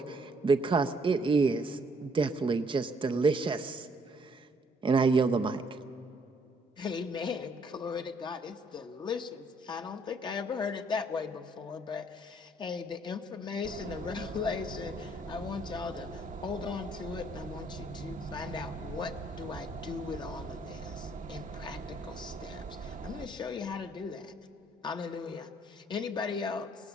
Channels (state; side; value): normal; both; correlation 0.66